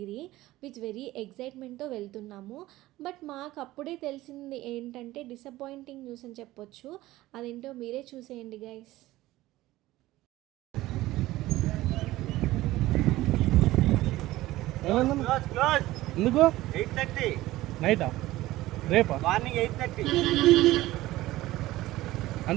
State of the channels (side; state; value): left; quieter; 16.9 dB